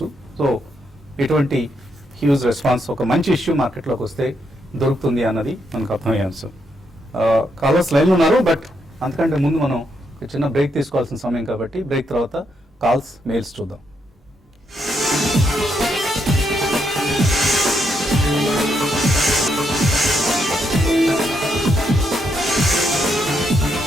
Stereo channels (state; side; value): normal; both; correlation 0.78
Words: సో ఇటువంటి హ్యూజ్ రెస్పాన్స్ ఒక మంచి ఇష్యూ మార్కెట్లోకి వస్తే దొరుకుతుంది అన్నది మనకు అర్థమయ్యే అంశం. కాలర్స్ లైన్లో ఉన్నారు, బట్ అంతకంటే ముందు మనం ఒక చిన్న బ్రేక్ తీసుకోవాల్సిన సమయం కాబట్టి బ్రేక్ తర్వాత కాల్స్, మెయిల్స్ చూద్దాం.